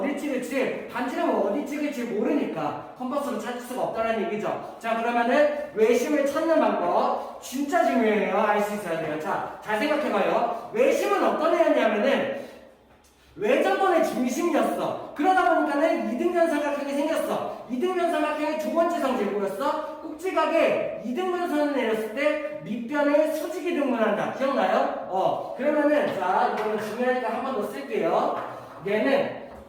찍을지, 반지름을 어디 찍을지 모르니까 컴퍼스로 찾을 수가 없다는 얘기죠. 자, 그러면은 외심을 찾는 방법 진짜 중요해요. 알 수 있어야 돼요. 자, 잘 생각해봐요. 외심은 어떤 애였냐면은 외접원의 중심이었어. 그러다 보니까는 이등변 삼각형이 생겼어. 이등변 삼각형의 두 번째 성질 뭐였어? 꼭지각에 이등분선을 내렸을 때 밑변을 수직이등분한다. 기억나요? 그러면은 자, 이거는 중요하니까 한 번 더 쓸게요. 얘는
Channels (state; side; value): identical; both; correlation 1.00